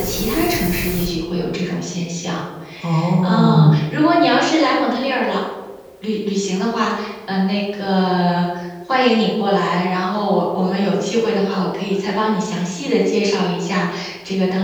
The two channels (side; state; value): both; identical; correlation 1.00